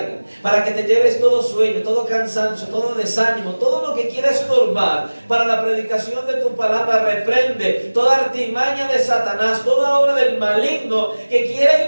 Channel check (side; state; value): both; inverted; correlation -1.00